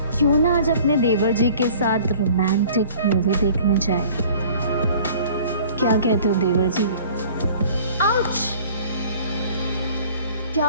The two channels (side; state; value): both; inverted; correlation -0.49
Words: क्यों ना आज अपने देवर जी के साथ रोमांटिक मूवी देखने जाए। क्या कहते हो देवर जी? आउच! क्या